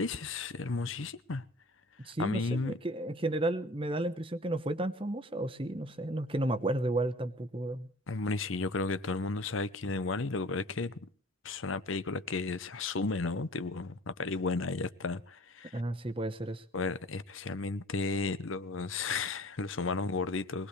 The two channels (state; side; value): normal; both; correlation 0.46